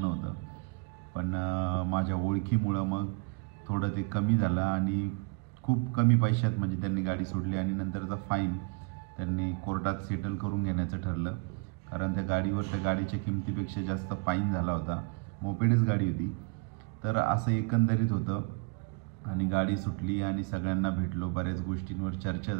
होतं, पण माझ्या ओळखीमुळं मग थोडं ते कमी झालं, आणि खूप कमी पैशात म्हणजे त्यांनी गाडी सोडली, आणि नंतरचा फाईन त्यांनी कोर्टात सेटल करून घेण्याचं ठरलं, कारण त्या गाडीच्या किमतीपेक्षा जास्त फाईन झाला होता, मोपेडच गाडी होती। तर असं एकंदरीत होतं, आणि गाडी सुटली आणि सगळ्यांना भेटलो, बऱ्याच गोष्टींवर चर्चा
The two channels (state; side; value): quieter; left; 32.2 dB